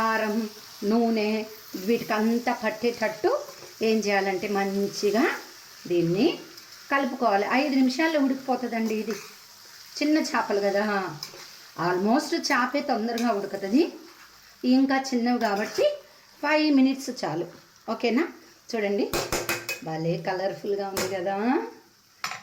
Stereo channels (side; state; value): both; identical; correlation 1.00